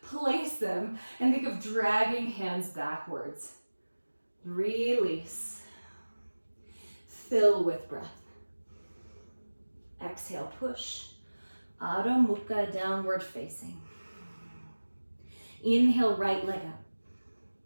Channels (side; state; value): both; inverted; correlation -1.00